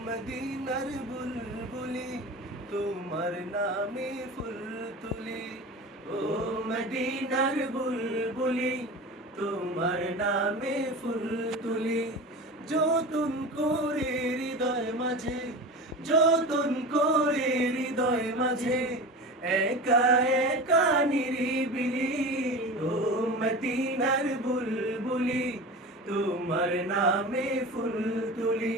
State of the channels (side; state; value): both; normal; correlation 0.31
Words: মদিনার বুলবুলি তোমার নামে ফুল তুলি। ও মদিনার বুলবুলি তোমার নামে ফুল তুলি। যতন করে হৃদয় মাঝে, যতন করে হৃদয় মাঝে, একা একা নিরিবিলি। ও মদিনার বুলবুলি তোমার নামে ফুল তুলি।